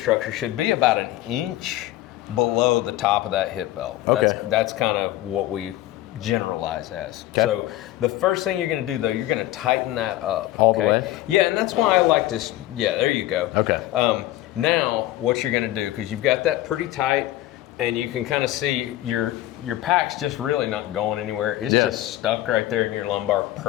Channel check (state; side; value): quieter; right; 15.3 dB